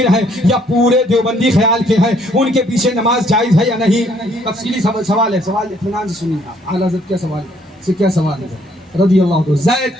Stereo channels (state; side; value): normal; both; correlation 0.65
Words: ہیں یا پورے دیوبندی خیال کے ہیں، ان کے پیچھے نماز جائز ہے یا نہیں؟ تفصیلی سوال ہے، سوال اطمینان سے سنیے آپ۔ اعلیٰ حضرت کیا سوال ہے رضی اللہ عنہ۔ زید